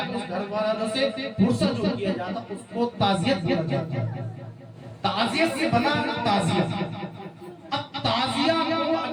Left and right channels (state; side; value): identical; both; correlation 1.00